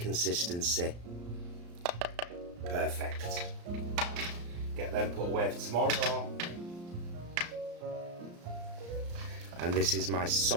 Perfect. Get them put away for tomorrow. And this is my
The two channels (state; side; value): late; left; 34 ms